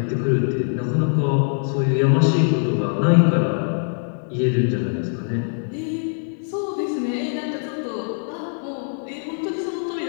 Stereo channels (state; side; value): silent; right; 64 dB below the other